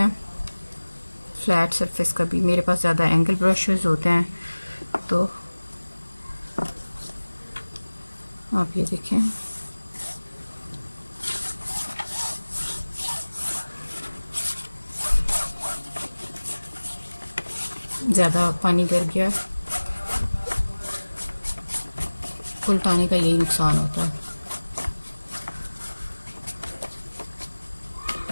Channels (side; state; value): both; inverted; correlation -1.00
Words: फ्लैट सरफेस का भी। मेरे पास ज़्यादा एंगल ब्रशेस होते हैं, तो आप ये देखें। ज़्यादा पानी गिर गया, उल्टाने का यही नुकसान होता है।